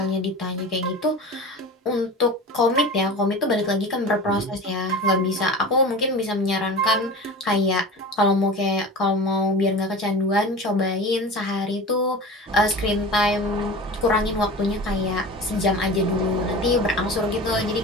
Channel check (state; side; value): normal; both; correlation 0.34